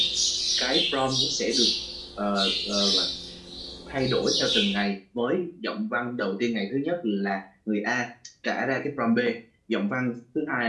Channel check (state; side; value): identical; both; correlation 1.00